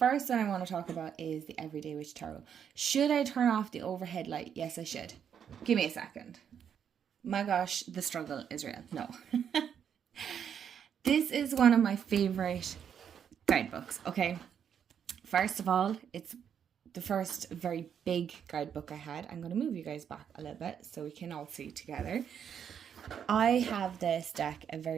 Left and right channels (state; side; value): quieter; left; 8.2 dB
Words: one I want to talk about is the Everyday Witch Tarot. Should I turn off the overhead light? Yes, I should. Give me a second. My gosh, the struggle is real. No. This is one of my favorite guidebooks, okay? First of all, it's the first very big guidebook I had. I'm going to move you guys back a little bit so we can all see together. I have this deck a